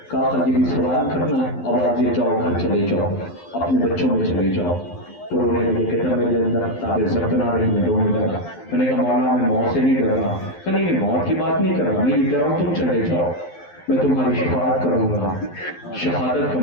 کہا کہ یہ بھی سوال کرنا ہے. آواز دے جاؤ, گھر چلے جاؤ, اپنے بچوں میں چلے جاؤ. تو رونے لگے, کہتا میرے اندر تابع ضبط نہ رہی, میں رونے لگا. میں نے کہا مولا میں موت سے نہیں ڈر رہا. کہ نہیں, میں موت کی بات نہیں کر رہا, میں یہ کہہ رہا ہوں تم چلے جاؤ, میں تمہاری شفاعت کروں گا, شہادت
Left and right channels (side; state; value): right; late; 12 ms